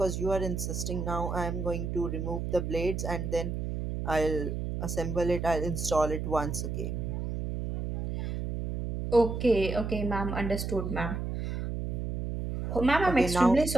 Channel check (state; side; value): noise; right; hum, 3 dB below the sound